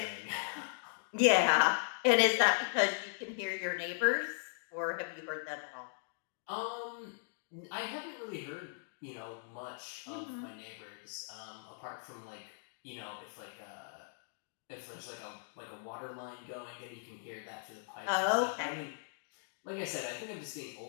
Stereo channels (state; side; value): silent; right; digital silence